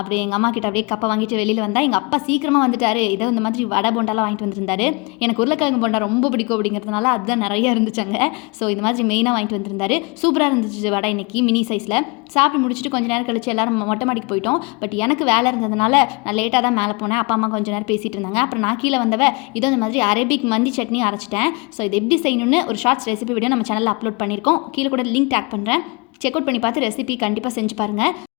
எங்க அம்மா கிட்ட அப்படியே கப்பை வாங்கிட்டு வெளியில வந்தா, எங்க அப்பா சீக்கிரமா வந்துட்டாரு. ஏதோ இந்த மாதிரி வடை போண்டாலாம் வாங்கிட்டு வந்திருந்தாரு. எனக்கு உருளைக்கிழங்கு போண்டா ரொம்ப பிடிக்கும் அப்படிங்கிறதுனால அதுதான் நிறைய இருந்துச்சாங்க. ஸோ இந்த மாதிரி மெயினாக வாங்கிட்டு வந்திருந்தாரு. சூப்பராக இருந்துச்சு வடை இன்னைக்கு மினி சைஸில். சாப்பிட்டு முடிச்சுட்டு கொஞ்ச நேரம் கழிச்சு எல்லாரும் மொட்டை மாடிக்கு போயிட்டோம். பட் எனக்கு வேலை இருந்ததுனால நான் லேட்டாக தான் மேலே போனேன். அப்பா அம்மா கொஞ்சம் நேரம் பேசிகிட்டு இருந்தாங்க. அப்புறம் நான் கீழே வந்தவ இதோ இந்த மாதிரி அரபிக் மந்தி சட்னி அரைச்சிட்டேன். ஸோ இது எப்படி செய்யணும்னு ஒரு ஷார்ட்ஸ் ரெசிபி வீடியோ நம்ம சேனலில் அப்லோட் பண்ணியிருக்கோம். கீழே கூட லிங்க் டேக் பண்ணுறேன். செக் அவுட் பண்ணி பார்த்து ரெசிபி கண்டிப்பாக செஞ்சு பாருங்கள்.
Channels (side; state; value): right; quieter; 29.0 dB